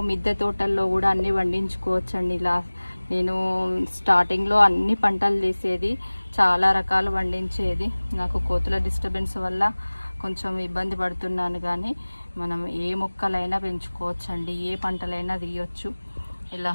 మిద్దె తోటల్లో కూడా అన్ని పండించుకోవచ్చండి. ఇలా నేను స్టార్టింగ్లో అన్ని పంటలు తీసేది, చాలా రకాలు పండించేది. నాకు కోతుల డిస్టర్బెన్స్ వల్ల కొంచెం ఇబ్బంది పడుతున్నాను, కానీ మనం ఏ మొక్కలైనా పెంచుకోవచ్చండి, ఏ పంటలైనా తీయొచ్చు. ఇలా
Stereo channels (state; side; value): inverted; both; correlation -1.00